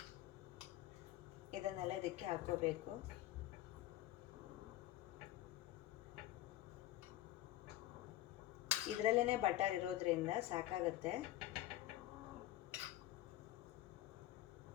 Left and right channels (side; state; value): right; quieter; 14.7 dB